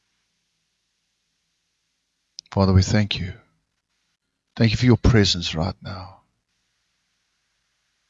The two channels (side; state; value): both; identical; correlation 1.00